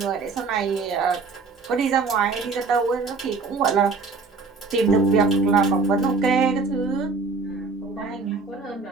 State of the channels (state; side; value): quieter; left; 4.3 dB